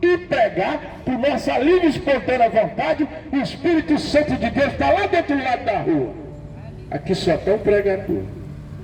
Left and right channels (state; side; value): identical; both; correlation 1.00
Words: e pregar por nossa livre e espontânea vontade. O Espírito Santo de Deus está lá do outro lado da rua. Aqui só tem um pregador,